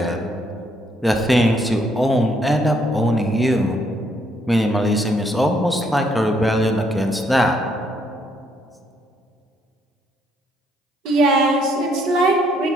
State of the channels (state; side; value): normal; both; correlation 0.70